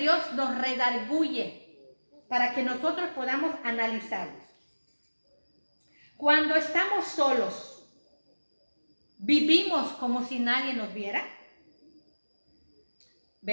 nos redarguye para que nosotros podamos analizarlos. Cuando estamos solos, ¿vivimos como si nadie nos viera?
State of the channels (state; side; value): inverted; both; correlation -1.00